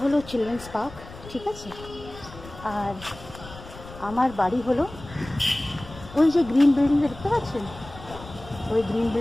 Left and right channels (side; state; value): left; noise; rumble, 16 dB below the sound